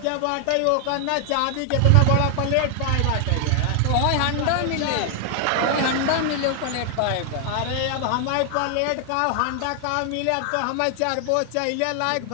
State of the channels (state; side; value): different; both; correlation 0.00